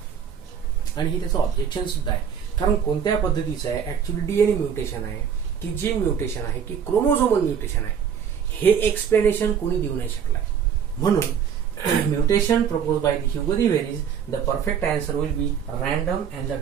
आणि हे त्याचं ऑब्जेक्शन सुद्धा आहे. कारण कोणत्या पद्धतीचं आहे? ऍक्च्युअली डीएनए म्युटेशन आहे की जीन म्युटेशन आहे की क्रोमोझोमल म्युटेशन आहे, हे एक्सप्लेनेशन कोणी देऊ नाही शकलाय. म्हणून mutation propose by the Hugo de Vries, the perfect answer will be random and the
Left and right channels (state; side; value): quieter; left; 7.8 dB